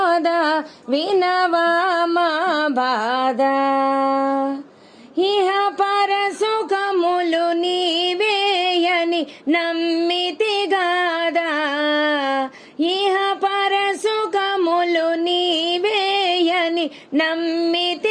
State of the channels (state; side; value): identical; both; correlation 1.00